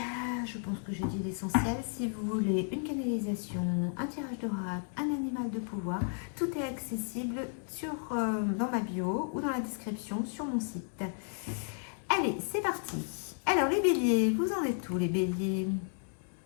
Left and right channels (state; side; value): silent; right; 56 dB below the other